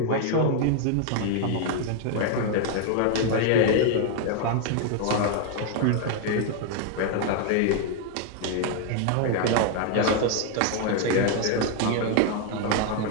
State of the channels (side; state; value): both; different; correlation 0.00